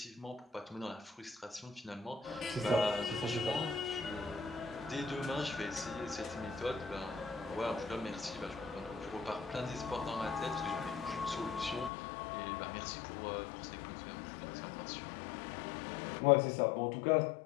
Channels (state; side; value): drops out; right; at 11.9 s